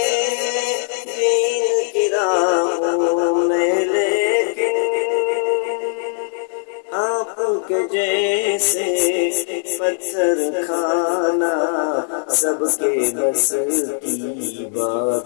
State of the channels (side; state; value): right; silent; digital silence